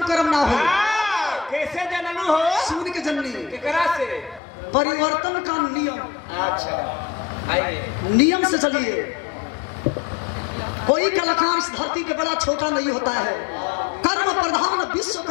कर्म ना हो। कैसे जननु हो? सुन के जननी केकरा से? परिवर्तन का नियम। अच्छा आइए नियम से चलिए। कोई कलाकार इस धरती के बड़ा छोटा नहीं होता है। कर्म प्रधान विश्व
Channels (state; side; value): drops out; right; at 4.4 s